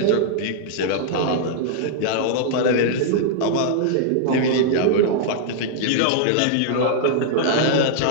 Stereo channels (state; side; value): different; both; correlation -0.02